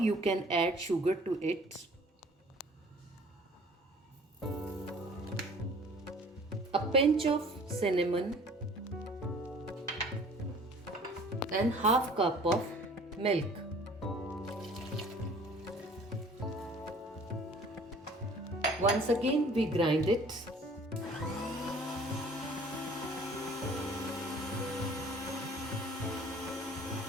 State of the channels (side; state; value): both; normal; correlation 0.51